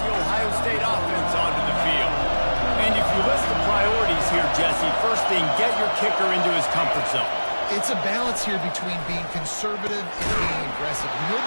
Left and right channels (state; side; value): inverted; both; correlation -1.00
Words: the Ohio State offense onto the field. And if you list the priorities here, Jesse, first thing, get your kicker into his comfort zone. It's a balance here between being conservative and being aggressive. You know